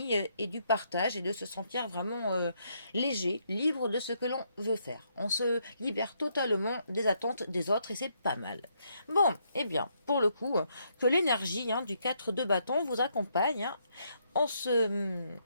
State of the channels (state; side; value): inverted; both; correlation -0.74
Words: et du partage et de se sentir vraiment léger, libre de ce que l'on veut faire. On se libère totalement des attentes des autres et c'est pas mal. Bon, eh bien, pour le coup, que l'énergie du 4 de bâton vous accompagne en ce